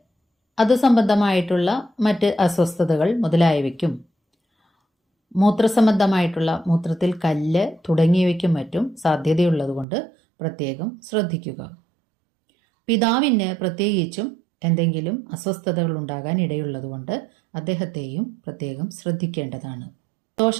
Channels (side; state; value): left; drops out; at 9.9 s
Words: അത് സംബന്ധമായിട്ടുള്ള മറ്റ് അസ്വസ്ഥതകൾ മുതലായവയ്ക്കും, മൂത്രസംബന്ധമായിട്ടുള്ള മൂത്രത്തിൽ കല്ല് തുടങ്ങിയവയ്ക്കും മറ്റും സാധ്യതയുള്ളതുകൊണ്ട് പ്രത്യേകം ശ്രദ്ധിക്കുക. പിതാവിന് പ്രത്യേകിച്ചും എന്തെങ്കിലും അസ്വസ്ഥതകൾ ഉണ്ടാകാൻ ഇടയുള്ളതുകൊണ്ട് അദ്ദേഹത്തെയും പ്രത്യേകം ശ്രദ്ധിക്കേണ്ടതാണ്.